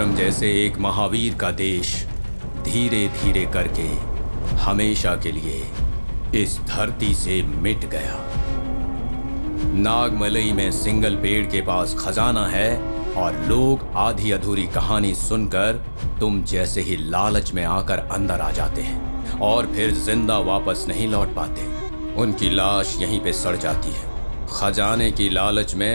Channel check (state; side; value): inverted; both; correlation -1.00